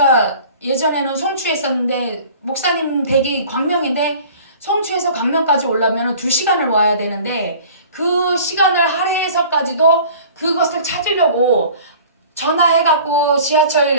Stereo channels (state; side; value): inverted; both; correlation -0.46